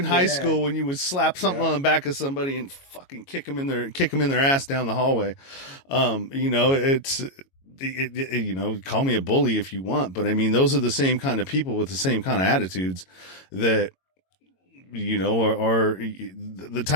high school when you would slap something on the back of somebody and fucking kick them in their ass down the hallway. Call me a bully if you want, but I mean, those are the same kind of people with the same kind of attitudes that, are the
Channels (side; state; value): right; late; 22 ms